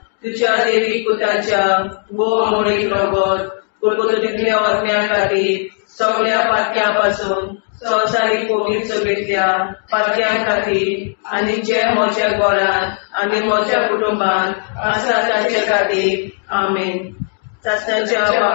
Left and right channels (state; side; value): silent; right; 59 dB below the other